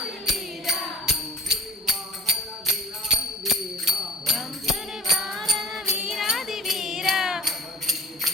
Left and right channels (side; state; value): both; normal; correlation 0.50